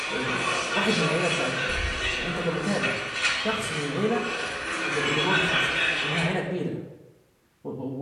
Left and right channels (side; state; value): both; identical; correlation 1.00